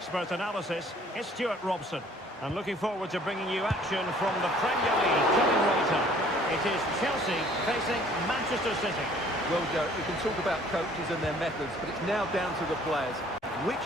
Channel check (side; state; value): both; normal; correlation 0.56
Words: analysis is Stuart Robson. And looking forward to bringing you action from the Premier League coming right up. It is Chelsea facing Manchester City. Well, Derek, we can talk about coaches and their methods, but it's now down to the players.